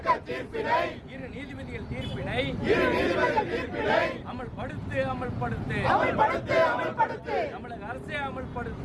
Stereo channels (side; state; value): both; identical; correlation 1.00